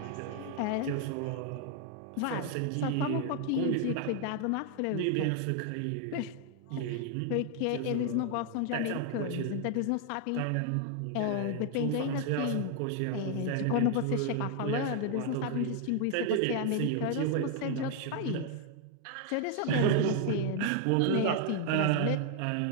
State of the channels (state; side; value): different; both; correlation 0.00